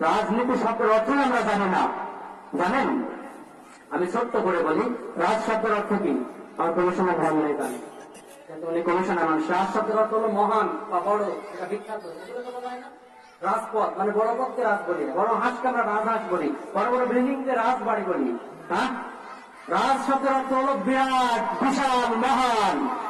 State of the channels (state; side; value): identical; both; correlation 1.00